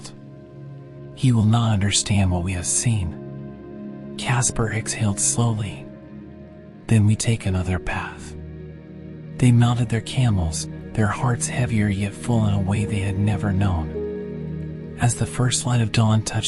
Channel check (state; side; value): identical; both; correlation 1.00